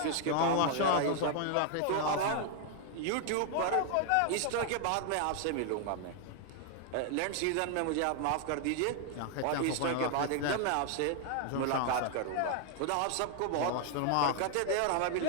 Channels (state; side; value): different; both; correlation 0.00